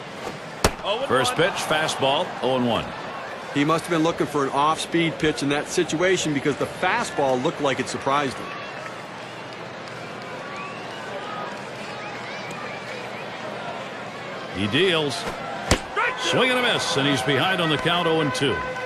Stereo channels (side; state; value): both; identical; correlation 1.00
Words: First pitch, fastball, 0-1. He must have been looking for an off-speed pitch in that situation because the fastball looked like it surprised him. He deals. Swing and a miss, and he's behind on the count 0-2.